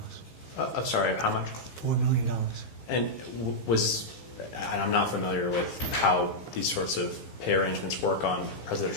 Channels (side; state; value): right; late; 15 ms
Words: I'm sorry, how much? $4 million. And and I'm not familiar with how these sorts of pay arrangements work on